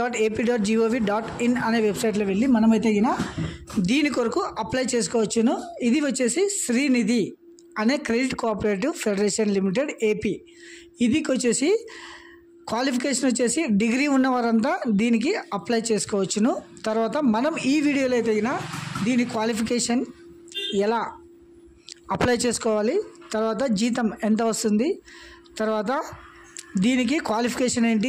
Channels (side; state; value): both; identical; correlation 1.00